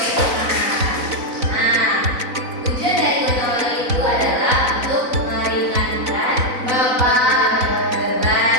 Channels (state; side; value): late; left; 4.0 ms